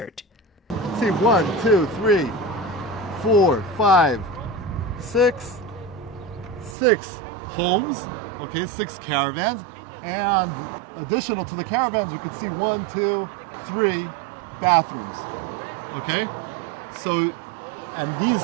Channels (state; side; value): drops out; left; at 6.8 s